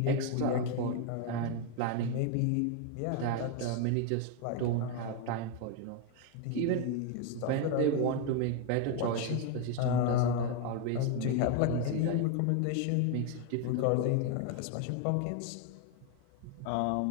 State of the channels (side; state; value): both; different; correlation 0.01